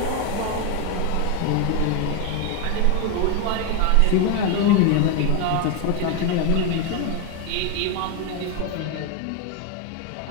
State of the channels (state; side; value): different; both; correlation 0.02